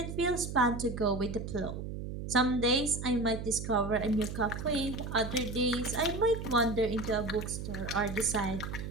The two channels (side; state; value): right; noise; hum, 7 dB below the sound